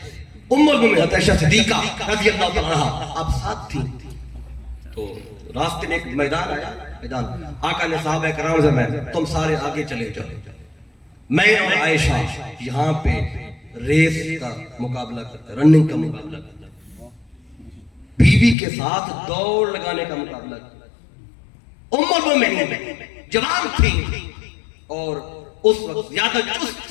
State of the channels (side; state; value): right; drops out; at 18.6 s